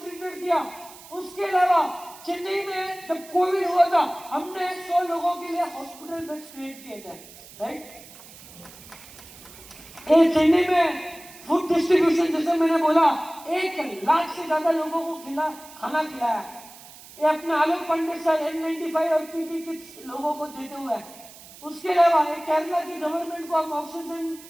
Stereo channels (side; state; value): right; noise; hiss, 19 dB below the sound